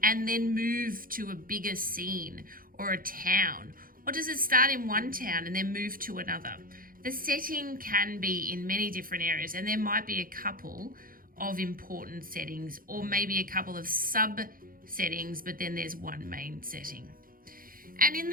and then move to a bigger scene or a town? Or does it start in one town and then move to another? The setting can be in many different areas, and there might be a couple of important settings or maybe a couple of sub-settings, but then there's one main setting. And in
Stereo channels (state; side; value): late; left; 0.41 ms